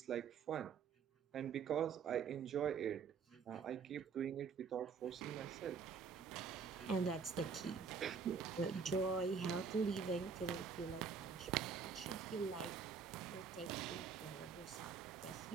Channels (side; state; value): left; quieter; 5.9 dB